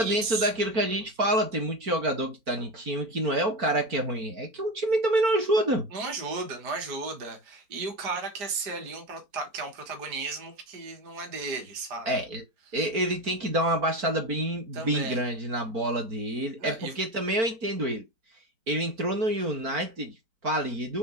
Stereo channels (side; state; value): left; late; 4.4 ms